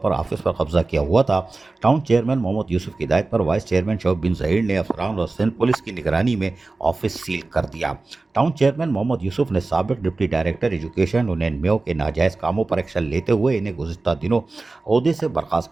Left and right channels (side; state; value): left; quieter; 3.4 dB